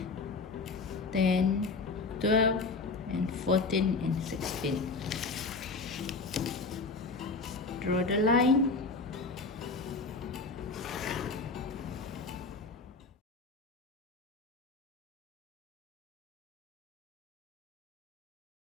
10, 12, and 14, and 16. Draw the line.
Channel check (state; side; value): quieter; right; 4.0 dB